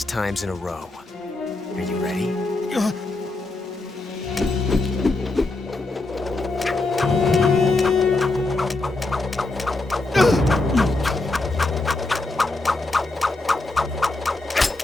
times in a row. Are you ready?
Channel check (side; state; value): right; quieter; 3.1 dB